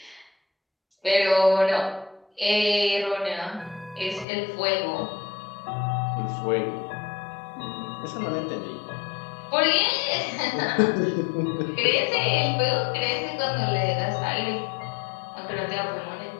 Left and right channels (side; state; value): right; drops out; at 4.2 s